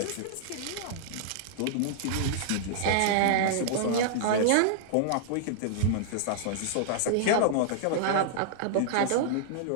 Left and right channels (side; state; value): both; different; correlation -0.01